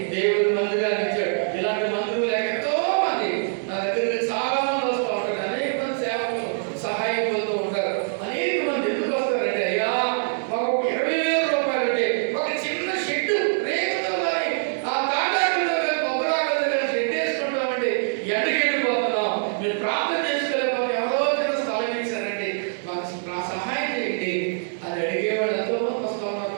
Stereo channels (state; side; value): silent; left; 58 dB below the other